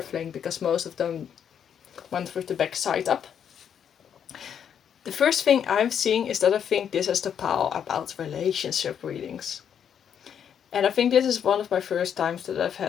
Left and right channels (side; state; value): right; quieter; 8.4 dB